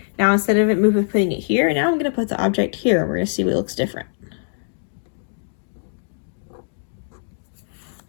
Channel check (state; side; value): silent; right; digital silence